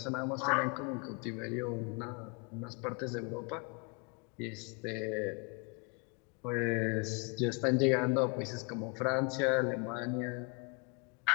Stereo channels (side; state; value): right; quieter; 32.9 dB